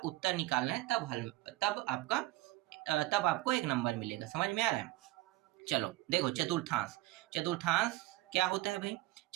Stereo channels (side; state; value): left; quieter; 18.8 dB